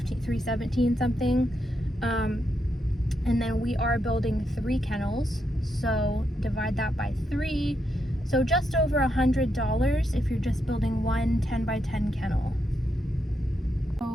something, and then we are building 3 kennels, so divide that by 3, so just over $100 if you're just building one 10 by 10 kennel.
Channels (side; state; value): both; normal; correlation 0.82